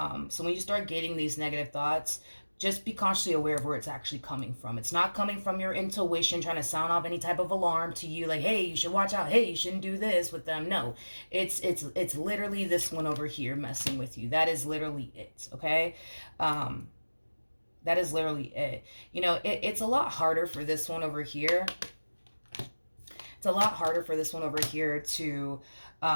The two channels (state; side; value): inverted; both; correlation -1.00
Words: So when you start getting these negative thoughts, just be consciously aware of where it's actually coming from. It's not coming from your intuition trying to sound off any type of alarm to you, like, hey, you should watch out, hey, you shouldn't do this with them. No, it's literally this one over here messing with you. That is literally it, okay? That is literally it. It's a lot harder for this one over here. It's a lot harder for this one over here to